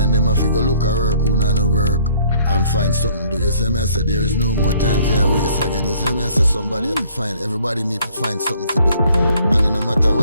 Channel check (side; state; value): both; inverted; correlation -0.60